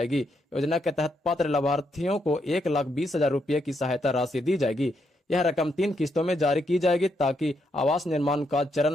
योजना के तहत पात्र लाभार्थियों को 1,20,000 रुपये की सहायता राशि दी जाएगी। यह रकम 3 किस्तों में जारी की जाएगी ताकि आवास निर्माण का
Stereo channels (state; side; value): normal; both; correlation 0.78